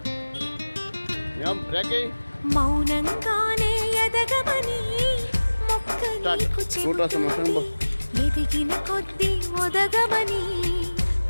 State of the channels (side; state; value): both; inverted; correlation -1.00